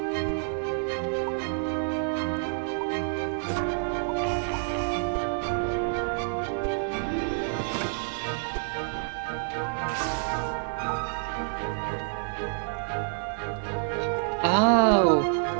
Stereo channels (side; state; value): left; silent; digital silence